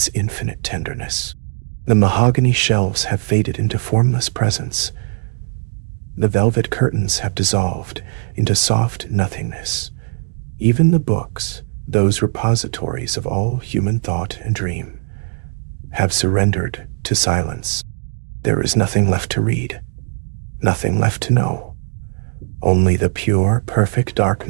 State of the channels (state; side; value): silent; left; digital silence